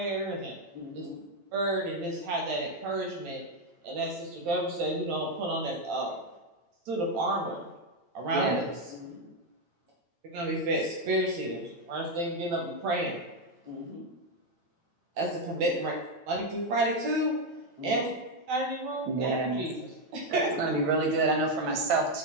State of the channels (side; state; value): left; late; 9.0 ms